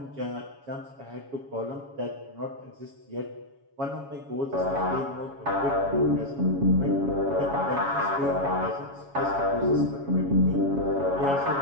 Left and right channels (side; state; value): left; late; 7.2 ms